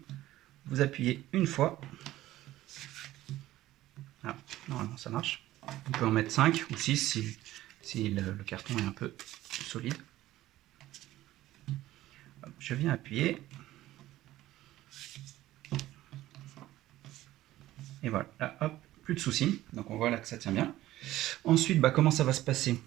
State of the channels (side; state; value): left; quieter; 15.3 dB